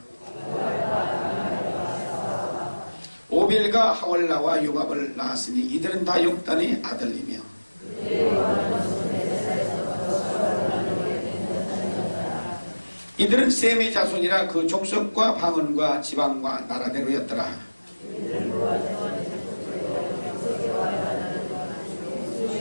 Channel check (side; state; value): both; inverted; correlation -1.00